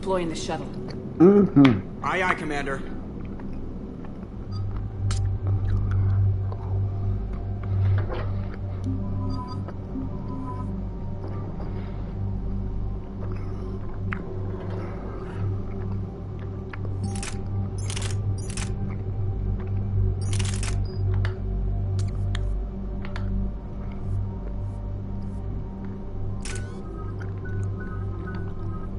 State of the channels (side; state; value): both; identical; correlation 1.00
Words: in the shuttle. Aye, aye, Commander.